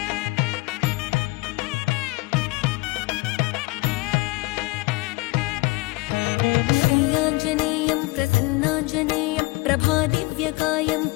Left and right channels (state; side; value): quieter; right; 23.8 dB